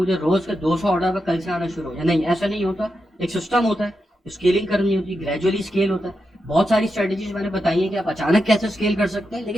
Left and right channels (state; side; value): normal; both; correlation 0.87